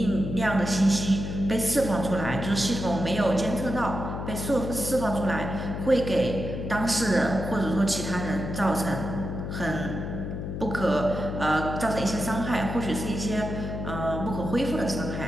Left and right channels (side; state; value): left; noise; hum, 5 dB below the sound